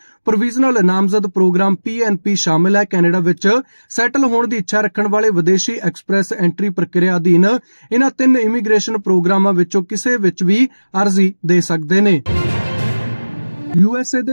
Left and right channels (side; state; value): both; inverted; correlation -1.00